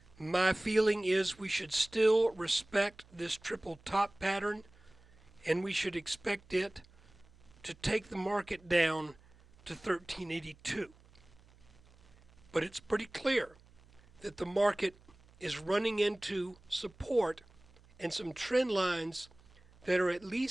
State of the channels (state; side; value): noise; right; hum, 27 dB below the sound